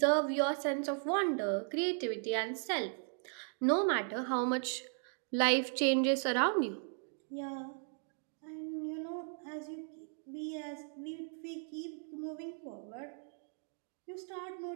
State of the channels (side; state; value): left; silent; 53 dB below the other